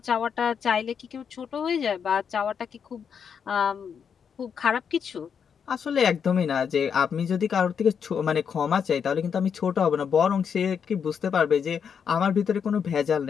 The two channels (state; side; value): quieter; right; 7.1 dB